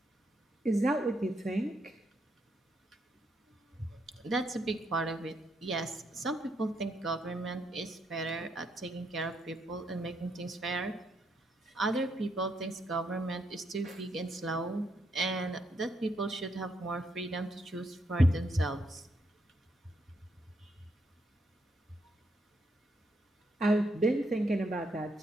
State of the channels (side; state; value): both; normal; correlation 0.77